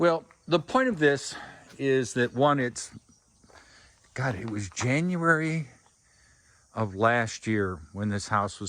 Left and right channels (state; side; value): identical; both; correlation 1.00